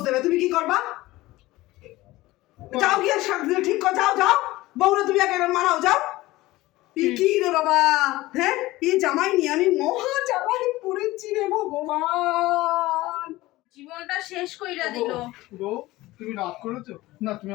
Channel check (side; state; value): right; quieter; 18.4 dB